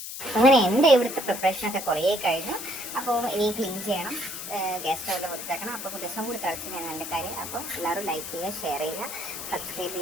അങ്ങനെ എൻ്റെ ഇവിടുത്തെ പ്രിപ്പറേഷനൊക്കെ കുറേ കഴിഞ്ഞു. അപ്പോൾ ഇനി ക്ലീൻ ചെയ്യണം, ഗ്യാസ് സ്റ്റൗവിൽ വൃത്തിയാക്കണം. അപ്പോൾ ദിവസം കൂടി തിളച്ച് ഞാൻ നല്ല കാര്യം. അപ്പോൾ എല്ലാവരും ലൈക്ക് ചെയ്യുക, ഷെയർ ചെയ്യുക, സബ്സ്ക്രൈബ്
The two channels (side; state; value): left; noise; hiss, 8 dB below the sound